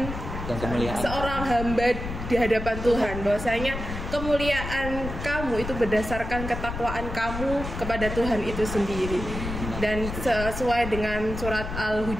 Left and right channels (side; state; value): left; noise; rumble, 6 dB below the sound